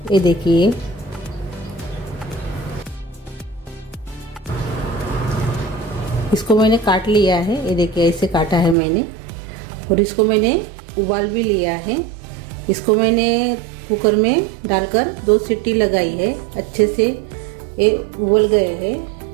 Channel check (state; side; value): drops out; left; at 8.8 s